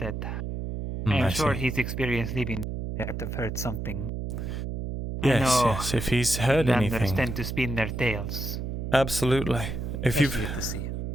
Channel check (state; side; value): noise; right; hum, 4 dB below the sound